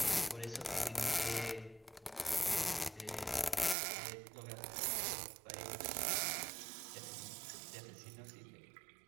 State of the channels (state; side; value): drops out; left; at 3.8 s